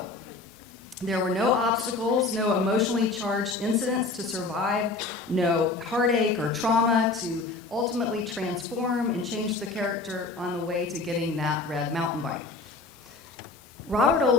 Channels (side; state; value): right; quieter; 3.7 dB